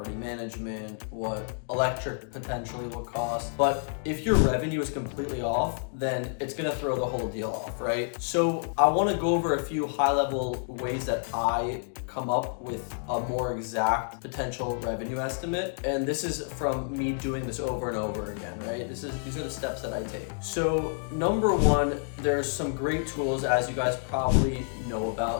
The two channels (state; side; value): silent; right; 59 dB below the other